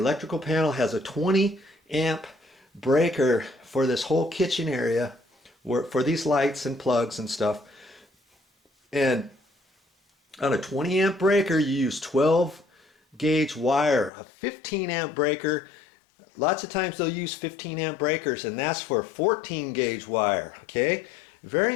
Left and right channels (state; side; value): drops out; right; at 14.1 s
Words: panel has a 20 amp breaker for this whole kitchen area, for these lights and plugs and stuff. And on a 20 amp breaker, you use 12 gauge wire. A 15 amp breaker, lots of times they'll use 15 amp breakers, and that's for 14 gauge wire. Okay, very